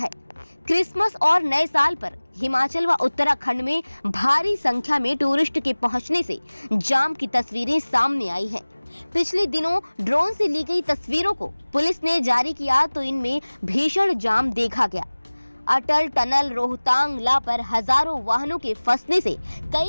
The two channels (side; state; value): both; inverted; correlation -1.00